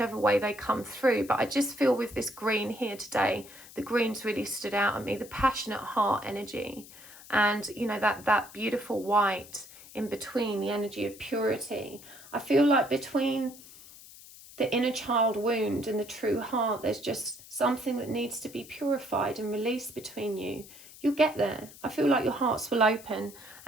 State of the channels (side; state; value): left; noise; hiss, 19 dB below the sound